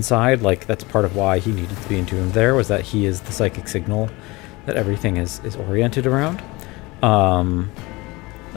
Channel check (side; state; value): right; quieter; 23.0 dB